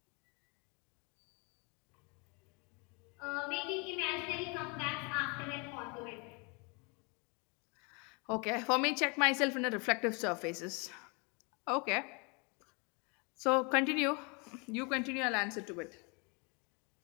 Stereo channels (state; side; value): quieter; right; 31.8 dB